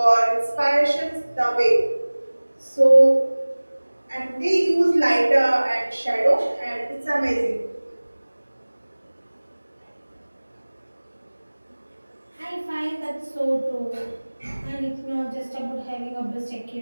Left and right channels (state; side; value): inverted; both; correlation -1.00